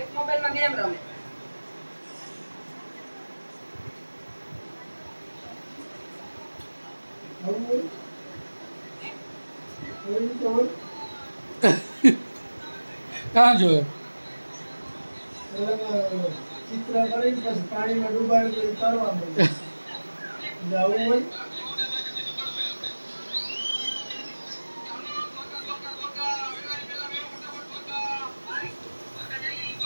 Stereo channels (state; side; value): inverted; both; correlation -1.00